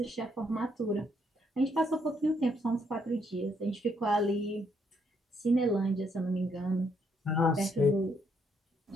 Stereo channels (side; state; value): both; normal; correlation 0.73